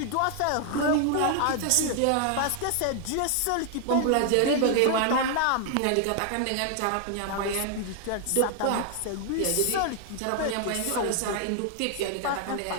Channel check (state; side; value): different; both; correlation 0.00